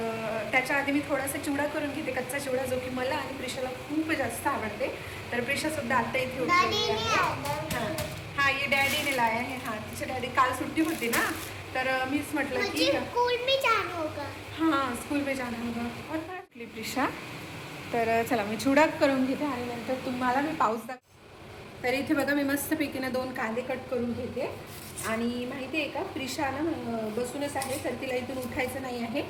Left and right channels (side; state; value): both; identical; correlation 1.00